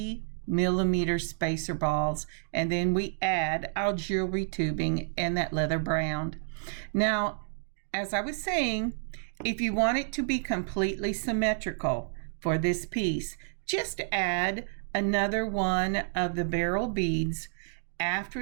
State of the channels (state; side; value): silent; left; digital silence